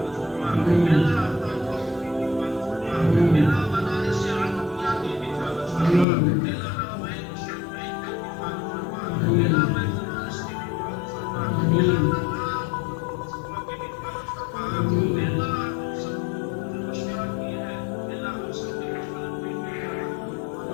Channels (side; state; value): right; drops out; at 6.1 s